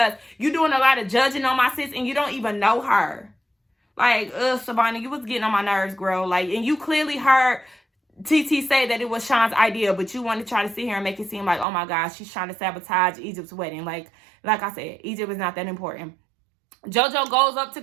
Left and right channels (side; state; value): left; drops out; at 11.7 s